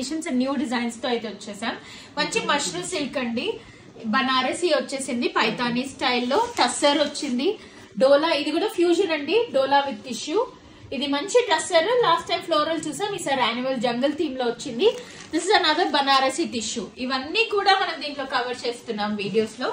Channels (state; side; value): identical; both; correlation 1.00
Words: and new designs తో అయితే వచ్చేసాం. మంచి మష్రూమ్ సిల్క్ అండి, బనారసి వచ్చేసింది, పైతానీ స్టైల్లో, టస్సర్ వచ్చింది, డోలా, ఇది కూడా ఫ్యూజన్ అండి, డోలా విత్ టిష్యూ. ఇది మంచి టస్సర్. లాస్ట్ టైం ఫ్లోరల్ చూసాం, ఈసారి యాన్యువల్ జంగల్ థీమ్ లో వచ్చింది. This is another Banarasi tissue. ఇవన్నీ కూడా మనం దీంట్లో కవర్ చేస్తున్నాం వీడియోస్ లో.